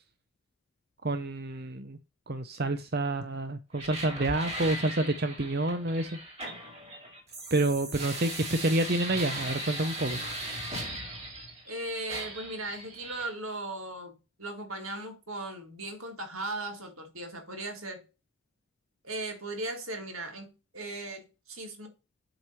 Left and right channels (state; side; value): normal; both; correlation 0.31